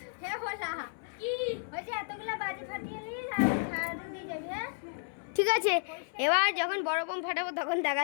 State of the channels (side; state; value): right; silent; 55 dB below the other